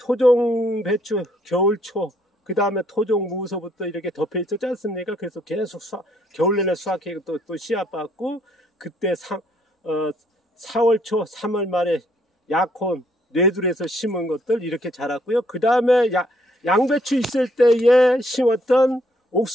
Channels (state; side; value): normal; both; correlation 0.68